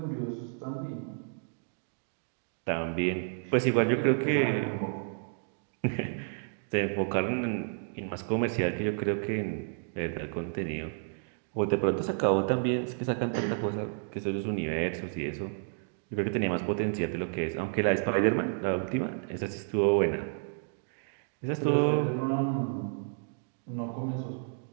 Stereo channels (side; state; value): left; silent; digital silence